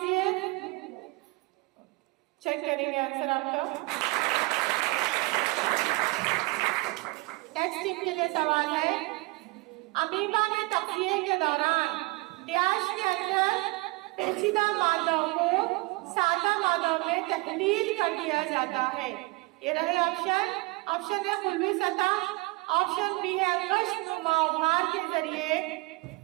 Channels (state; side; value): quieter; left; 25.4 dB